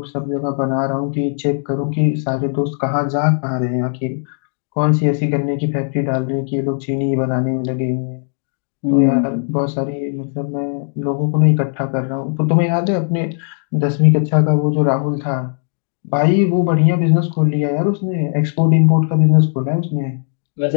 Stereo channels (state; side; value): silent; right; digital silence